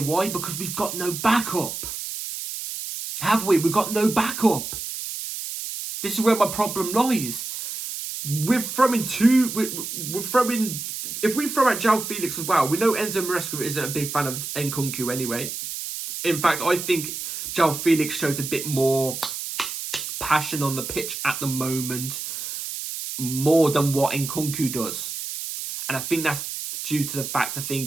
Because we've got no backup. Have we? We've got no backup. This is where my problem lies. we're throwing we're throwing. If we throw out João Felix as well, we know Enzo Maresca isn't a big fan of Nkunku anyway. In fact, I think João Felix shows a bit more passion on the pitch at the moment, more than what Nkunku does. And I think that's due to the fact I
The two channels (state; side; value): noise; right; hiss, 6 dB below the sound